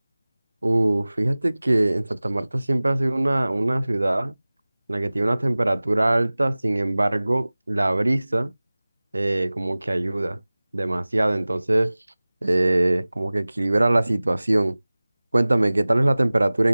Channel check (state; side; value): inverted; both; correlation -0.99